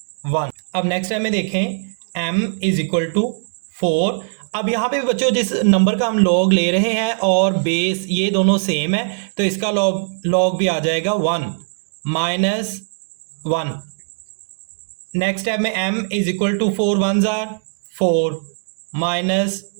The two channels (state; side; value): silent; left; digital silence